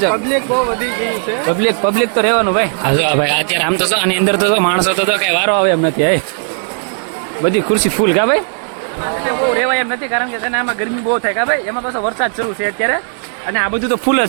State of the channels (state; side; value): silent; left; 62 dB below the other